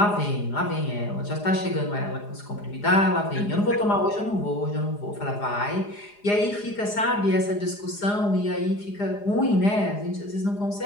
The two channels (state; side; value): late; right; 4.9 ms